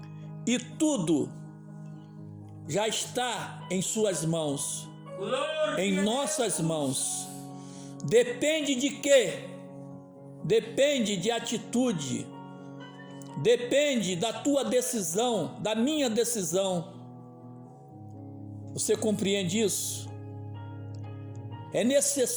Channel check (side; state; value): both; identical; correlation 1.00